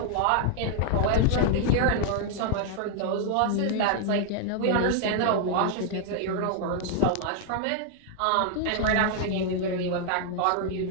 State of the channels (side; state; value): both; different; correlation 0.00